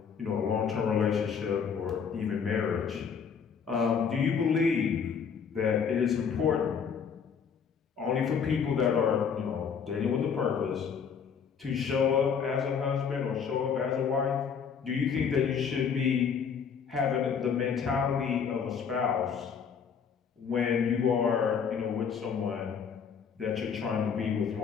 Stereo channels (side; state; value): right; quieter; 6.7 dB